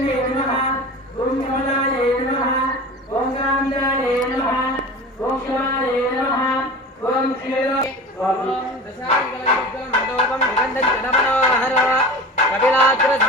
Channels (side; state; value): both; normal; correlation 0.34